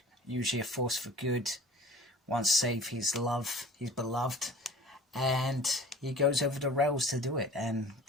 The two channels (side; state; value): both; normal; correlation 0.43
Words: usually a force for good, wants to save his beloved, and he goes over the rails to do it and